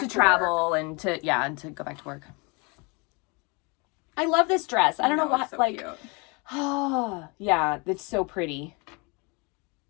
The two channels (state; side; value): quieter; right; 29.9 dB